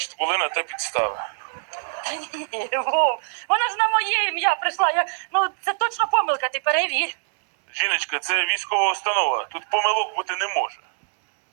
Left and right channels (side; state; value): left; silent; 63 dB below the other